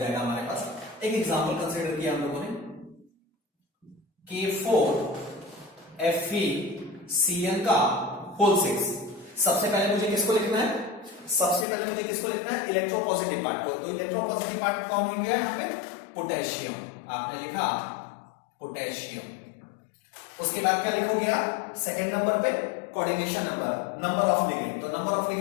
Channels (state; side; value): drops out; right; at 11.7 s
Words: हमारे पास। एक एग्जांपल कंसीडर किया हम लोगों ने K4 FeCN का होल 6। सबसे पहले मुझे किसको लिखना है? सबसे पहले मुझे किसको लिखना है? इलेक्ट्रोपॉजिटिव पार्ट को। तो इलेक्ट्रोपॉजिटिव पार्ट कौन हो गया यहां पे? पोटेशियम। आपने लिखा पोटेशियम। उसके बाद क्या लिखोगे आप? सेकंड नंबर पे coordination number, number of ligand. तो नंबर ऑफ